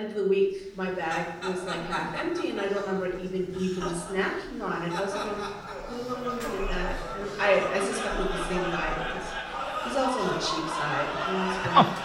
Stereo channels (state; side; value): identical; both; correlation 1.00